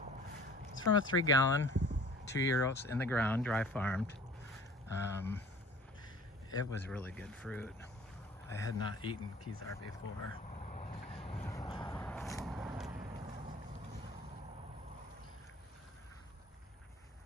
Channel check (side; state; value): both; normal; correlation 0.47